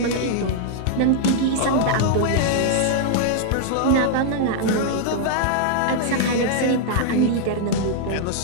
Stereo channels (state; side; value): different; both; correlation -0.01